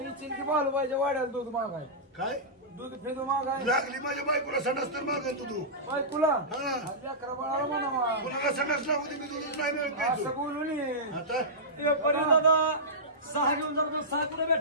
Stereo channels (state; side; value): normal; both; correlation -0.16